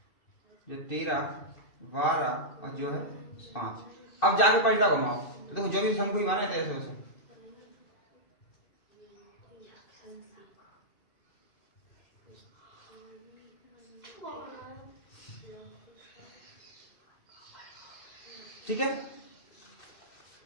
जो 13 12 और जो है 5। अब जाके परिता घुमाओ, तो देखो जो भी शंकु ही बने थे ऐसे वैसे, ठीक है।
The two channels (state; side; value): late; right; 2.6 ms